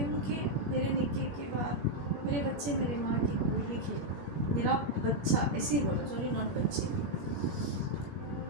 ہوں کہ میرے نکاح کے بعد میرے بچے میرے ماں کی گود میں کھیلیں. میرا بچہ، ایسے ہی بولا، سوری ناٹ بچے،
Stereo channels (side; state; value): left; late; 21 ms